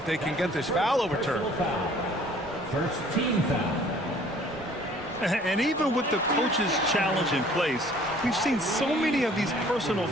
they can get this foul overturned. First team foul. And even with the coach's challenge in place, we've seen so many of these personal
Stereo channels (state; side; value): normal; both; correlation 0.54